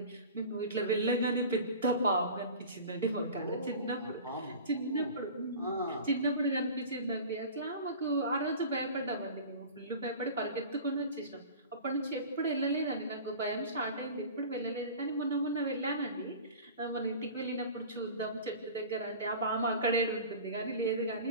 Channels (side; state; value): both; inverted; correlation -0.38